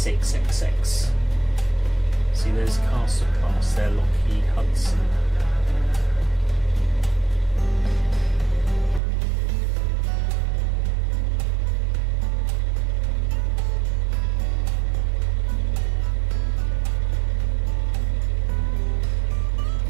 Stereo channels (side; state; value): left; drops out; at 9.0 s